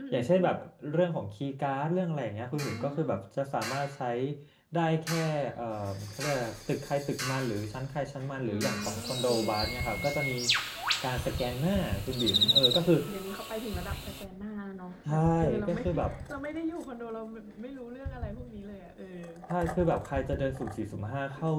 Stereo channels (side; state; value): both; identical; correlation 1.00